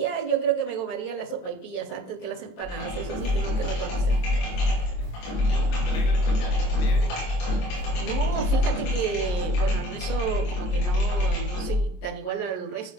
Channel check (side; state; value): right; late; 22 ms